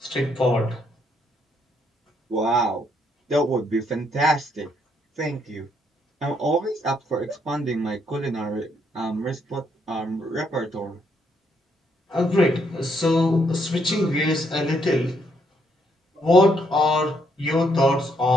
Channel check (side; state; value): both; normal; correlation 0.73